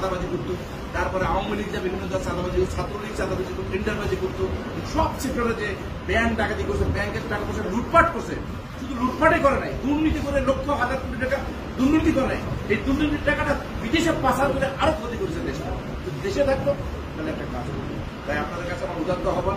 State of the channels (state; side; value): identical; both; correlation 1.00